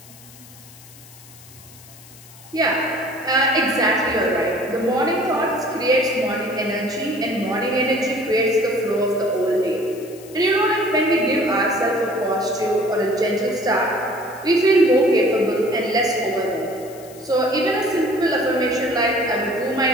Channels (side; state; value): left; noise; hiss, 21 dB below the sound